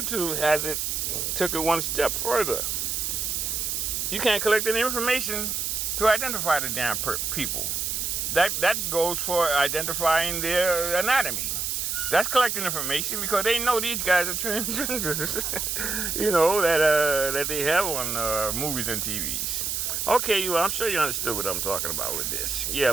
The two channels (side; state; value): right; noise; hiss, 1 dB below the sound